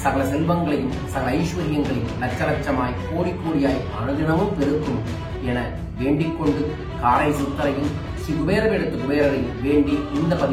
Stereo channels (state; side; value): identical; both; correlation 1.00